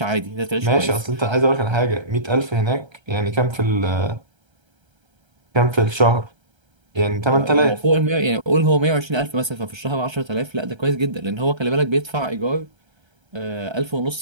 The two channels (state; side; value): late; left; 1.3 ms